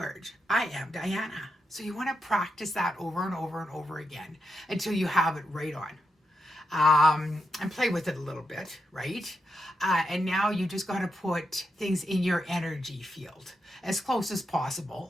I am Diana. So you want to practice that over and over and over again until you have it right on. And play with it a little bit, right? And now you just got to put things in your energy field as close as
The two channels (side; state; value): both; normal; correlation 0.85